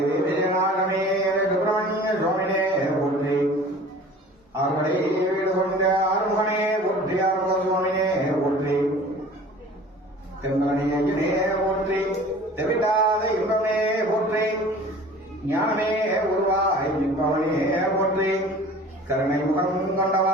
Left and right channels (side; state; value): both; normal; correlation 0.44